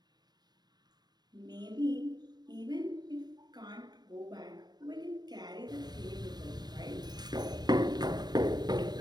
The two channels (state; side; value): late; left; 0.20 ms